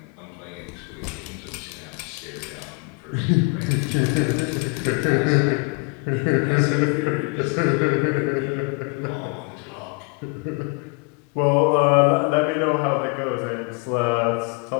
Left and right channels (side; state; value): right; quieter; 31.2 dB